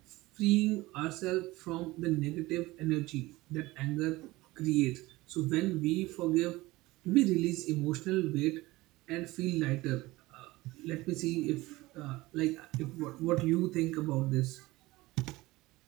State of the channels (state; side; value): quieter; left; 19.8 dB